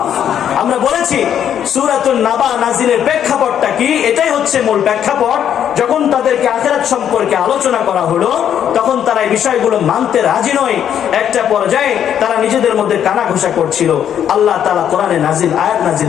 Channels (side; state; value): right; quieter; 9.4 dB